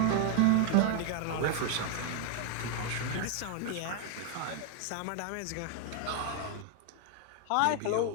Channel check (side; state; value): both; different; correlation 0.00